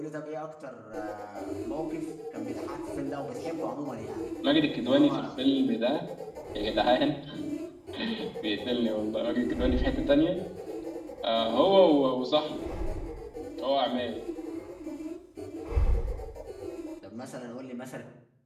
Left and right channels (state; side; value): identical; both; correlation 1.00